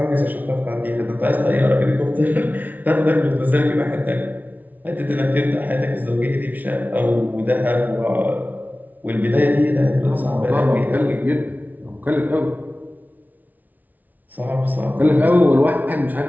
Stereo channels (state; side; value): late; left; 0.078 ms